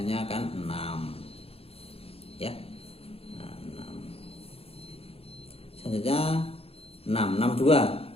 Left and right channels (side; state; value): right; late; 0.28 ms